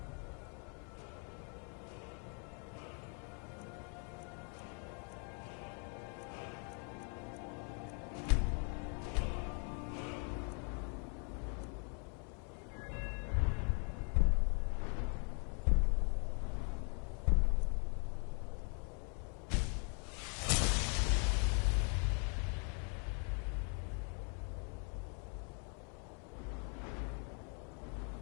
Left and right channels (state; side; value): quieter; right; 39.7 dB